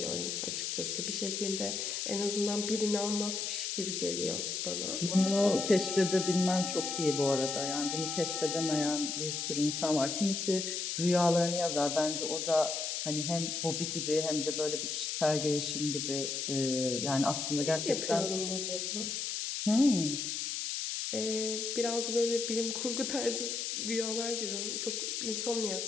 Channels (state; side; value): noise; left; hiss, 2 dB below the sound